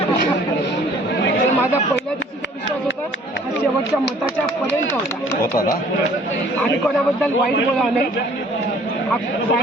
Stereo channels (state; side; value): normal; both; correlation 0.55